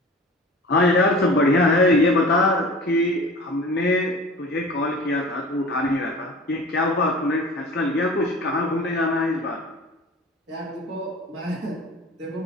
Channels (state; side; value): normal; both; correlation 0.41